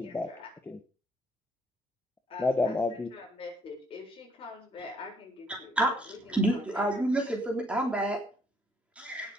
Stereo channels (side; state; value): both; normal; correlation 0.67